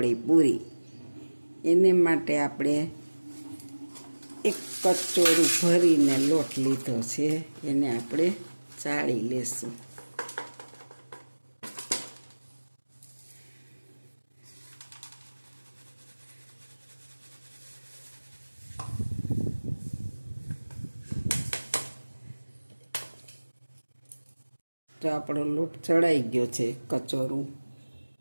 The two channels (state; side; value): inverted; both; correlation -1.00